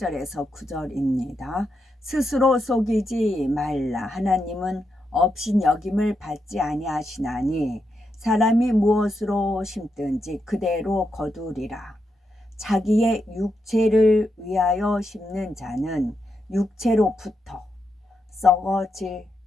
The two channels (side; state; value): both; normal; correlation 0.84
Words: 9절입니다. 스스로 속이지 말라. 하나님은 업신여김을 받지 아니하시나니 사람이 무엇으로 심든지 그대로 거두리라. 자기의 육체를 위하여 심는 자는 육체로부터 썩어질